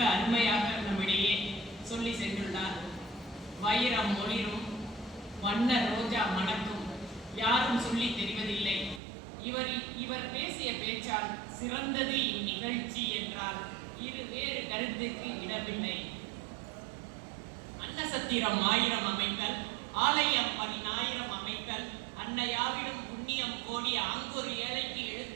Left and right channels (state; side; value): drops out; left; at 9.0 s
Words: அருமையாக நம்மிடையே சொல்லி சென்றுள்ளார். வைரம் ஒளிரும், வண்ண ரோஜா மணக்கும், யாரும் சொல்லி தெரிவதில்லை. இவர் பேசிய பேச்சால் சிறந்தது இந்நிகழ்ச்சி என்றால் வேறு கருத்துக்கு இடமில்லை. அன்னசத்திரம் 1000 அமைத்தல், ஆலயம் 10,000 அமைத்தல், அன்னையாவிடம் புண்ணியம் கோடி அங்கொரு ஏழைக்கு